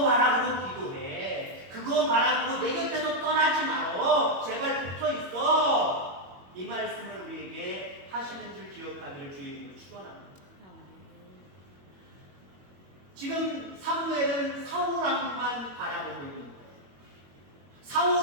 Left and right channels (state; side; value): late; left; 22 ms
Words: 바라보고 기도해. 그거 바라보고 내 곁에서 떠나지 말어. 제발 붙어 있어. 이 말씀을 우리에게 하시는 줄 기억하기를 주의 이름으로 축원합니다. 지금 사무엘은 사울왕만 바라보고 있는 거예요.